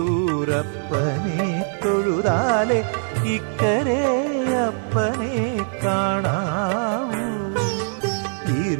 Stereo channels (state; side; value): silent; left; 64 dB below the other